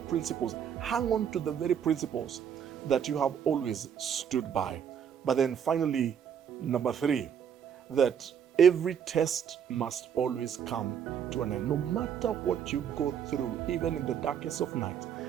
Hang on to the very principles that you have always stood by. But then finally, number 3, that Every test must always come to an end. No matter what you go through, even in the darkest of night,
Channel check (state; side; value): quieter; left; 8.2 dB